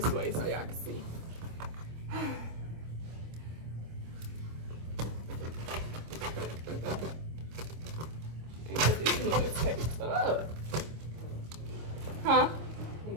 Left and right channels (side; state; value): left; late; 25 ms